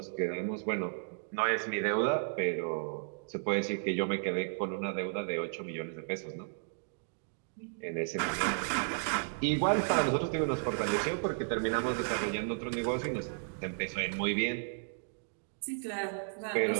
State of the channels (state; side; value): silent; left; digital silence